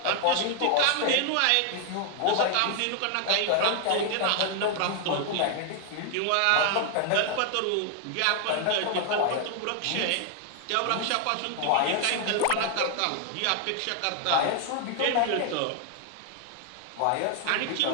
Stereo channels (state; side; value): different; both; correlation 0.00